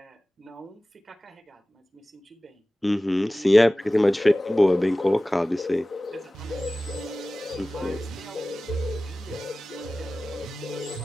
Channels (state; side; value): normal; both; correlation 0.97